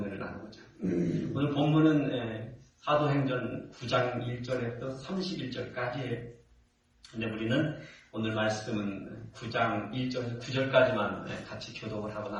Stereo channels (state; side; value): identical; both; correlation 1.00